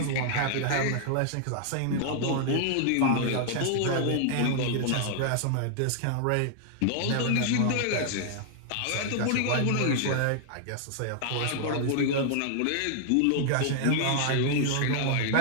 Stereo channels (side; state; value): both; different; correlation 0.00